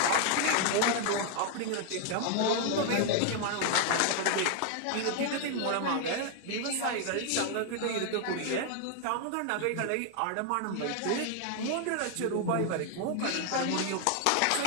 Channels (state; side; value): different; both; correlation 0.00